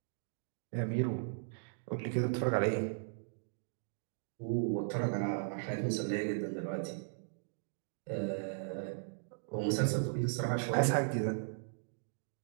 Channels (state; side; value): silent; left; digital silence